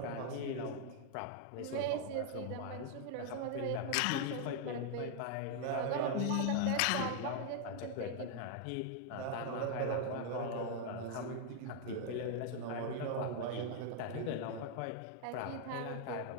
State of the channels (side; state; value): both; different; correlation 0.00